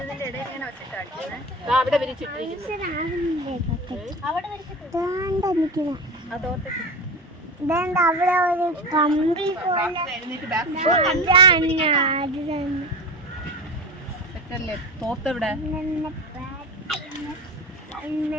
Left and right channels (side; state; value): both; normal; correlation 0.26